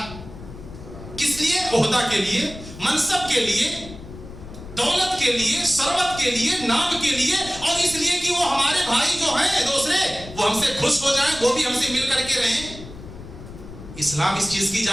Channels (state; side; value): noise; left; rumble, 14 dB below the sound